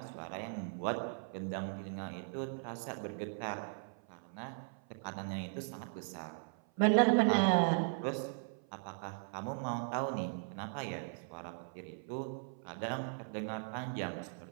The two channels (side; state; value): left; silent; 52 dB below the other